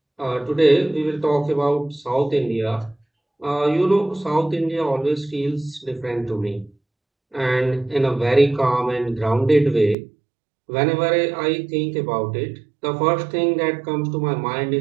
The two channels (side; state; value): left; drops out; at 10.0 s